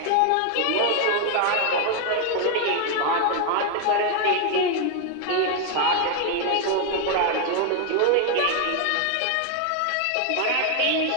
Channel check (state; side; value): different; both; correlation 0.01